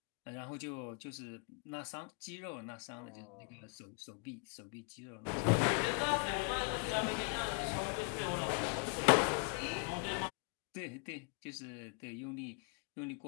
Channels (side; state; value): right; quieter; 36.1 dB